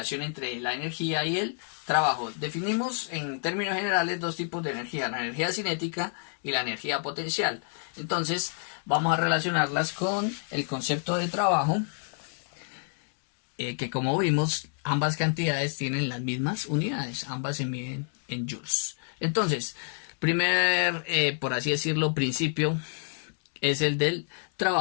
entre la energía y el trabajo. Definimos en términos generales dos tipos de energía, la energía cinética y la energía potencial. Entonces, vamos a relacionarlas con el concepto de trabajo, que como vimos, ambas cantidades tienen las mismas unidades, ambas se miden en joules. Entonces, primer, por así decirlo, principio es el del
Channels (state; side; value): silent; right; 59 dB below the other